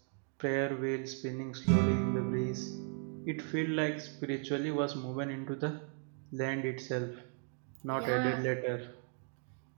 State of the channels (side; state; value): left; quieter; 39.0 dB